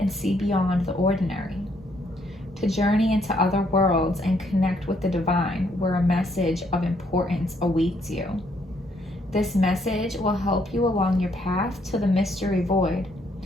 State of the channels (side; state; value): both; normal; correlation 0.70